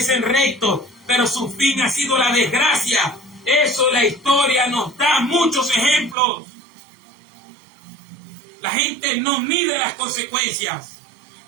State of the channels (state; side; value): drops out; left; at 6.2 s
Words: rectos, pero su fin ha sido la desgracia. Eso la historia nos da muchos ejemplos. La gente no mide las consecuencias.